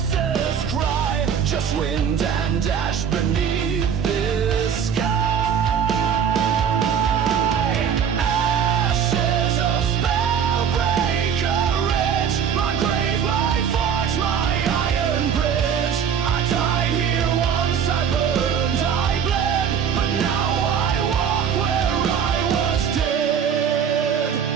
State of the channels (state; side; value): quieter; left; 7.8 dB